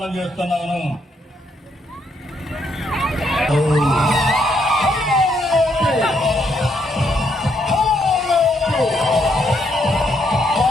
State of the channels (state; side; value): normal; both; correlation 0.74